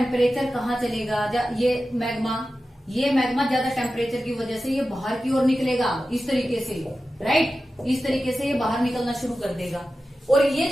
कहाँ चलेगा, ये मैग्मा ज्यादा टेम्परेचर की वजह से ये बाहर की ओर निकलेगा, इस तरीके से, राइट, इस तरीके से ये बाहर निकलना शुरू कर देगा। और ये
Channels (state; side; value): normal; both; correlation 0.93